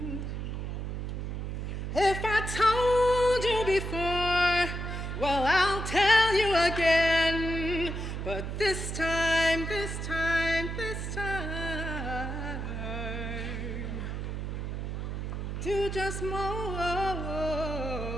If I told you before, well, I'll tell you again. But this time, do just more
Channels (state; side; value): noise; right; hum, 4 dB below the sound